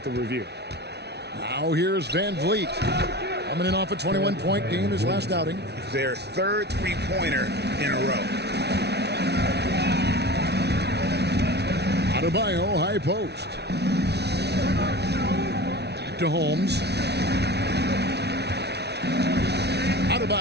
the review. Now here's Van Vliet. Coming in off a 21-point game his last outing. Their third three-pointer in a row. Adebayo, high post. Back to Holmes.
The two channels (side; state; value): left; late; 0.49 ms